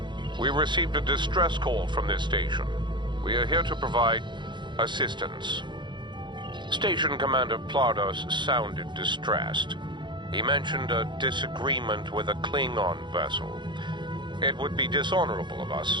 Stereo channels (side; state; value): left; late; 0.23 ms